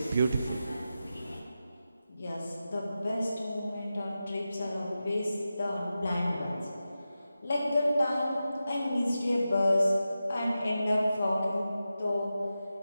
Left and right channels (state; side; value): inverted; both; correlation -0.92